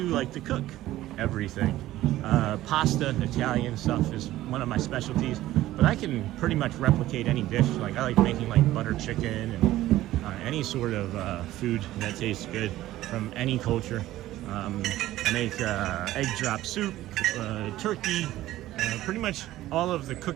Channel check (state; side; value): quieter; left; 15.2 dB